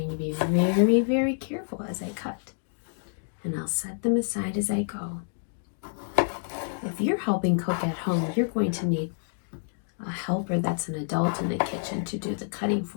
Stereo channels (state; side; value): silent; right; digital silence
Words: to be very, very careful as I cut. And I'll set them aside as I go. If you're helping cook at home, you're going to need a helper that's an adult in the kitchen to do the cutting